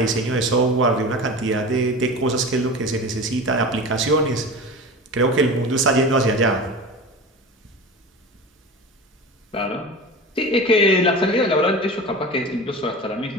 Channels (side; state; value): both; normal; correlation 0.32